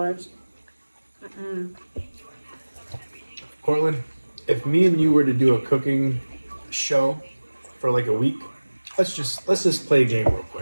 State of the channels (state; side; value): inverted; both; correlation -1.00